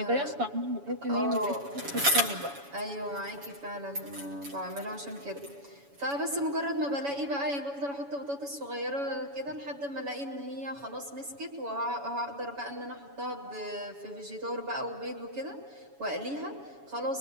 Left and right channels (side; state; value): left; late; 7.1 ms